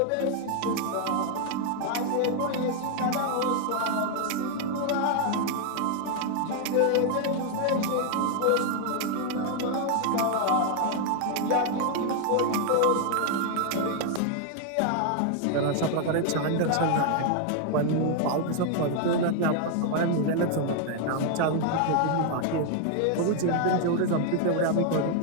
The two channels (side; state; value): both; different; correlation 0.00